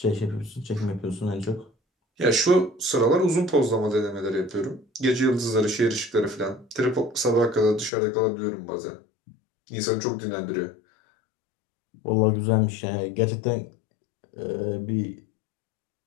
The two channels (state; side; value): drops out; right; at 7.9 s